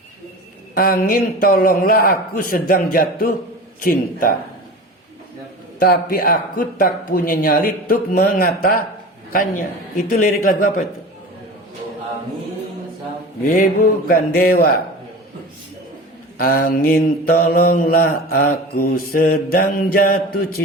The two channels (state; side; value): normal; both; correlation 0.34